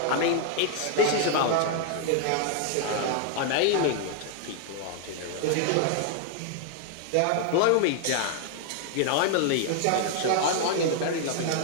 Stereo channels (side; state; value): both; different; correlation 0.00